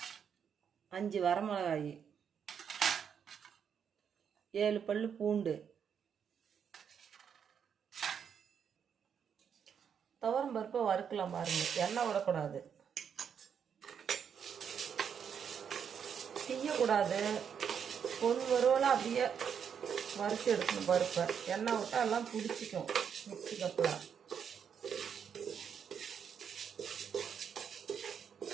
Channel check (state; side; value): quieter; left; 7.6 dB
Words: 5 வரமிளகாய், 7 பல்லு பூண்டு. துவரம்பருப்பை வறுக்கலாம் பாருங்கள், எண்ணெய் விடக்கூடாது, செய்யக்கூடாது. பொன் வறுவலாக அப்படியே வறுத்து எடுக்கணும் பருப்பை. எண்ணெய் விட்டால் எல்லாம் பிடிச்சிக்கும் மிக்சி கப்பில்.